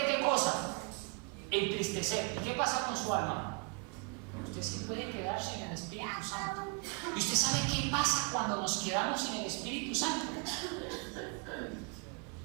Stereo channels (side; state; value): left; quieter; 32.9 dB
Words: ¿qué cosa? Entristecer. ¿Y qué pasa con su alma? Usted sí puede quedar sin el Espíritu Santo. ¿Y usted sabe qué pasa cuando nos quedamos sin el Espíritu Santo?